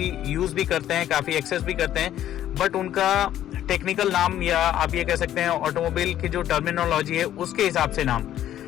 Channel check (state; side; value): quieter; right; 11.9 dB